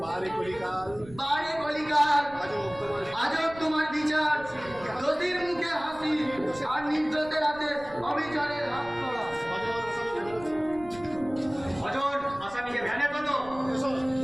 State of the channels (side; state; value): right; noise; rumble, 19 dB below the sound